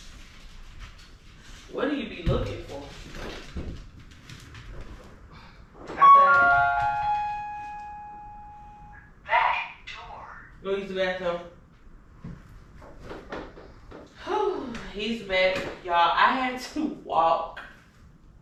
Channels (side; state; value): both; identical; correlation 1.00